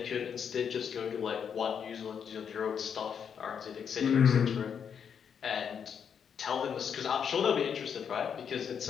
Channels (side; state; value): right; quieter; 7.4 dB